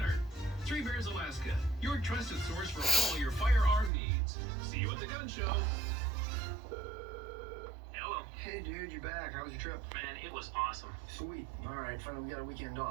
Three Bears Alaska, your trusted source for all your firearm needs. See you at the gun show. Hey dude, you back? How was your trip? Man, it was awesome. Sweet. Alright, finally we got a weekend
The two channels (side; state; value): left; drops out; at 3.9 s